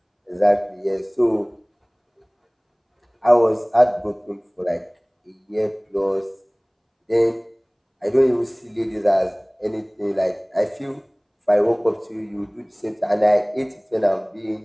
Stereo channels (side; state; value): both; identical; correlation 1.00